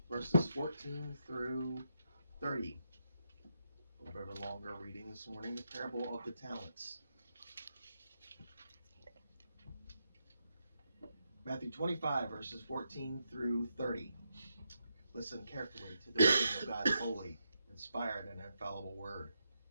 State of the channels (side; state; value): both; inverted; correlation -0.83